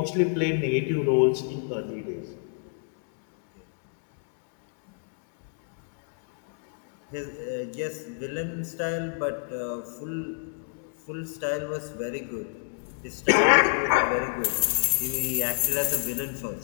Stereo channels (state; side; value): silent; right; digital silence